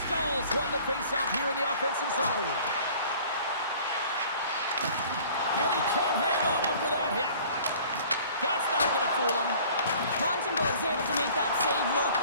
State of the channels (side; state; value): both; inverted; correlation -0.50